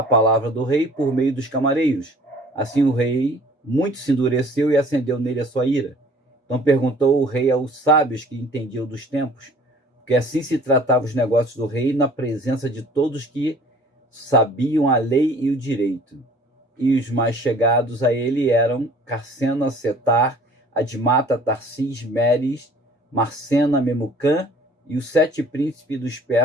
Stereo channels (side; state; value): both; normal; correlation 0.51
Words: palavra do rei por meio dos camareiros. Assim o rei muito se endureceu e acendeu nele a sua ira. Então perguntou o rei aos sábios que entendiam dos tempos, porque assim se tratavam os negócios do rei na presença de todos que sabiam a lei e o direito. E os mais chegados a ele eram Carcena, Setar, Admata, Tarsis, Meres, Marcena, Memucã e os 7 príncipes dos